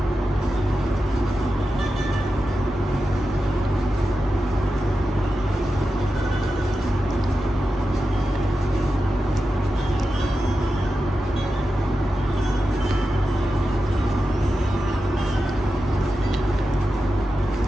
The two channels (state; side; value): normal; both; correlation 0.91